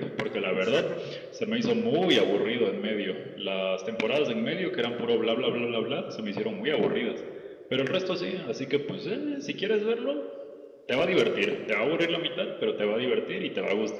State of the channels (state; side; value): identical; both; correlation 1.00